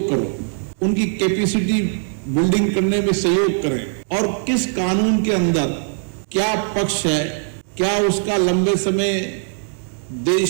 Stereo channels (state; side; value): silent; left; 66 dB below the other